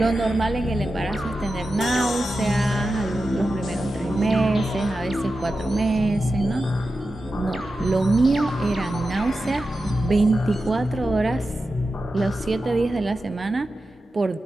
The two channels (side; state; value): both; normal; correlation 0.92